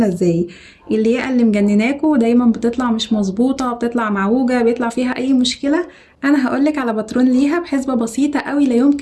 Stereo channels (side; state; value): both; identical; correlation 1.00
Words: ازاي. الياقة اللي مجنناكوا دايما بتطلع مش مظبوطه، بتطلع معوجه، بيطلع فيها اي مشكله. انا هقولك على باترون ليها بحسبه بسيطه قوي لا